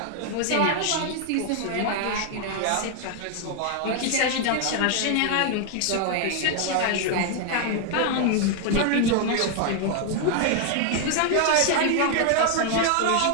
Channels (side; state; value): both; different; correlation 0.00